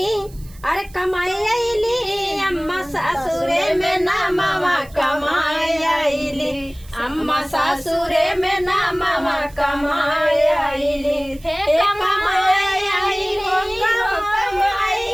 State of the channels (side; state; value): right; noise; hiss, 24 dB below the sound